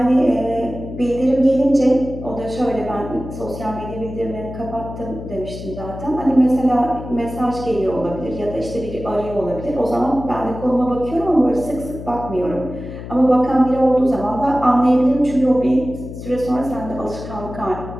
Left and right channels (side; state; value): left; noise; hum, 11 dB below the sound